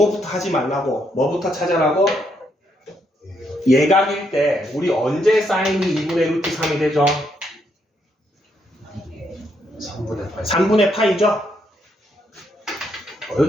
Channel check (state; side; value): normal; both; correlation 0.76